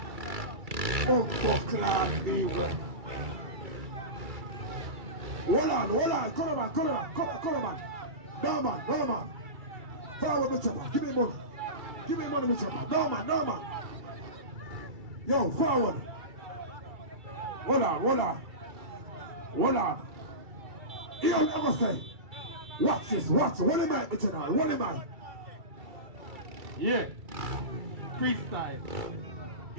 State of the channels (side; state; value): left; late; 2.3 ms